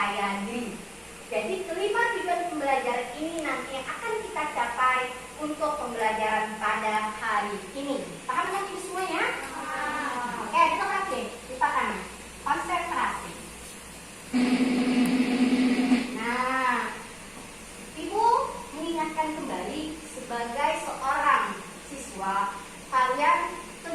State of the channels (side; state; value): both; identical; correlation 1.00